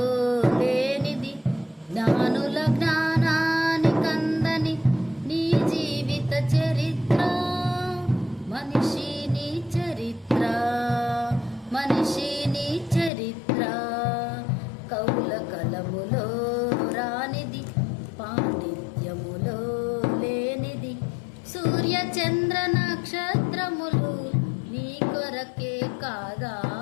లేనిది, జ్ఞానుల జ్ఞానానికందని నీ జీవిత చరిత్ర. మనిషి నీ చరిత్ర, మనిషి నీ చరిత్ర. కవుల కలములో రానిది, పాండిత్యములో లేనిది, సూర్య చంద్ర నక్షత్రములు నీ కొరకే కాదా?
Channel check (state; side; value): drops out; right; at 13.1 s